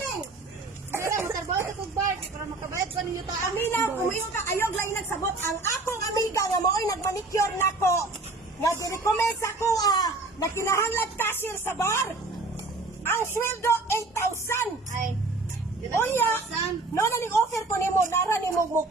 Pero, matarbaho sa kong bar. Para makabayad ko ng yuta. Aminaw, umayon ka ayog lang nagsabot ang akong amiga nga mooy nagmanicure nako. Nga di-recommend sa ko na kinahanglan cashier sa bar. Ang sweldo 8,000. Ay. Unya, no na ning offer ko nimo nara nimo mo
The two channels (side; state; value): left; quieter; 3.3 dB